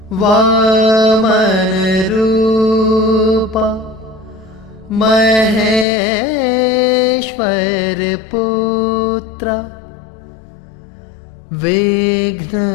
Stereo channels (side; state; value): right; drops out; at 5.9 s